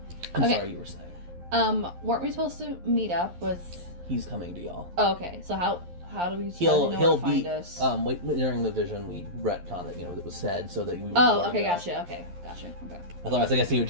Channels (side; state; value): left; late; 11 ms